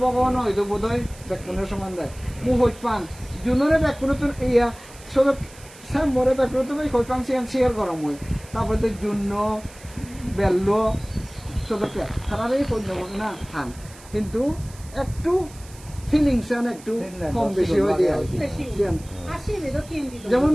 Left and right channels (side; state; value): right; noise; hiss, 21 dB below the sound